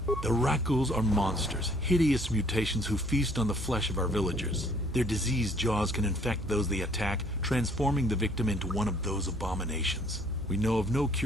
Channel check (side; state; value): both; normal; correlation 0.60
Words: The Rakghouls are monsters, hideous mutations who feast on the flesh of our villagers. Their diseased jaws can infect those they attack, transforming the victim into one of those abominations. We know of no